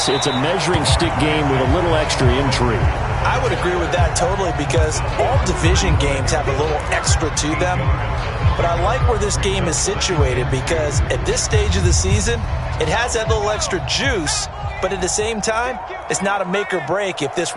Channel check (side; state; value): both; identical; correlation 1.00